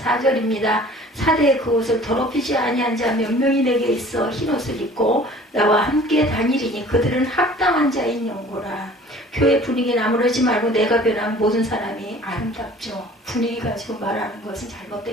사대의 그 옷을 더럽히지 아니한 자 몇 명이 내게 있어 흰옷을 입고 나와 함께 다니리니 그들은 합당한 자인 영고라. 교회 분위기 나무르지 말고 내가 변한 모든 사람이 아름답죠. 분위기 가지고 말하는 것은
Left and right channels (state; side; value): normal; both; correlation 0.48